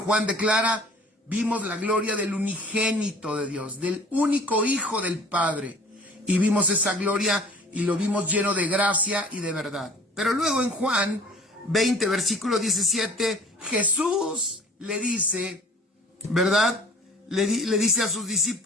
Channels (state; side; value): normal; both; correlation 0.49